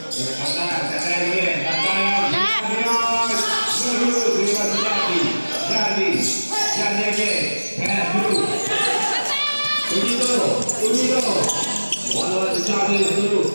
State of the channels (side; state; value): both; inverted; correlation -1.00